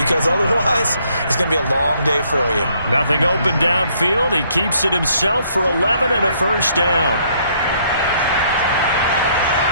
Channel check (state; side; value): inverted; both; correlation -0.67